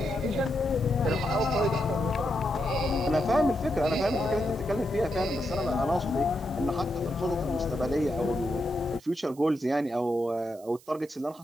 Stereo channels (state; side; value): noise; right; hiss, 25 dB below the sound